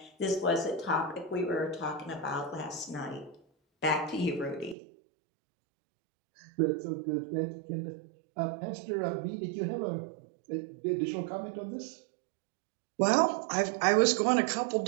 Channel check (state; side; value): drops out; left; at 4.8 s